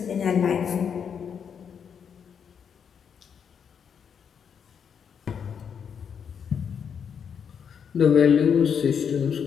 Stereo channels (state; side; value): quieter; right; 7.3 dB